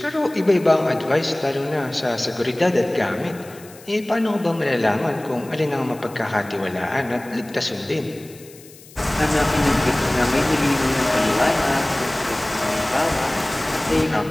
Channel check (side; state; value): left; noise; hiss, 22 dB below the sound